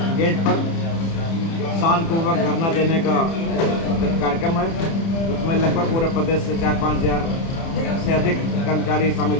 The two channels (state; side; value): late; right; 30 ms